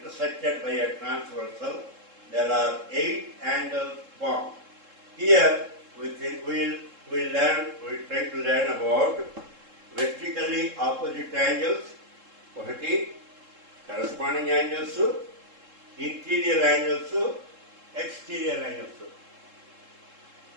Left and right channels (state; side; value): late; left; 3.7 ms